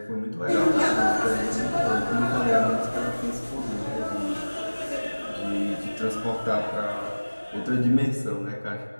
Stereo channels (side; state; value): both; inverted; correlation -1.00